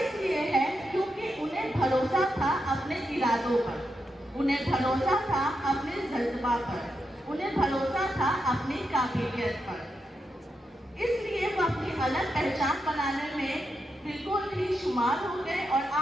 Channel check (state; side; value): normal; both; correlation 0.85